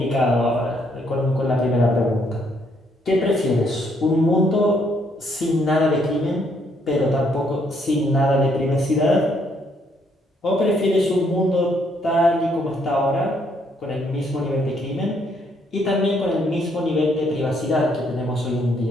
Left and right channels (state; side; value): normal; both; correlation 0.70